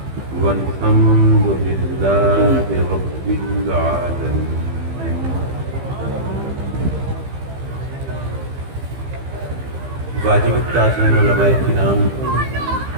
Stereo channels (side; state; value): left; late; 15 ms